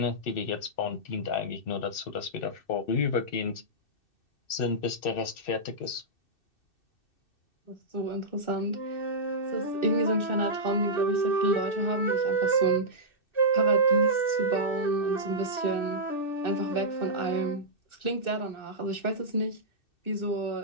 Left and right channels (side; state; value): right; late; 2.6 ms